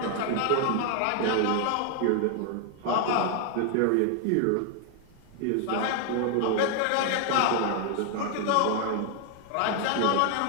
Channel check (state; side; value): different; both; correlation 0.00